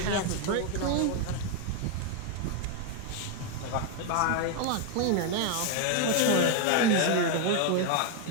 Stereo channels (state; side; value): different; both; correlation 0.00